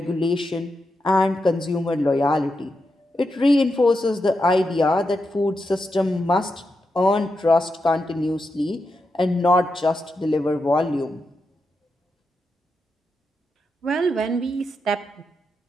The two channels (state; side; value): normal; both; correlation 0.86